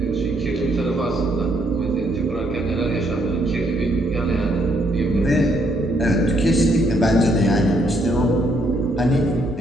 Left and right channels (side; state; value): both; normal; correlation 0.72